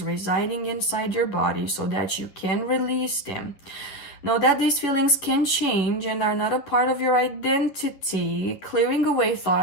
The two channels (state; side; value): late; right; 11 ms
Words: residing inside your body so that you can release them. Know that these feelings can change and are not a part of your identity, clearing away